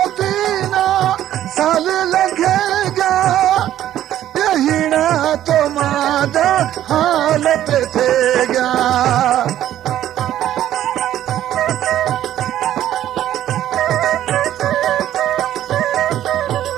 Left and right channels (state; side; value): quieter; left; 12.2 dB